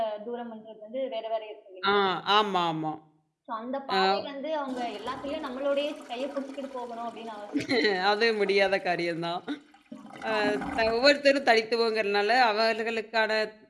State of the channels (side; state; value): both; identical; correlation 1.00